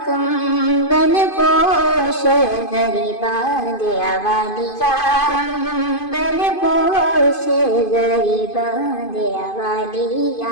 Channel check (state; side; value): late; right; 2.5 ms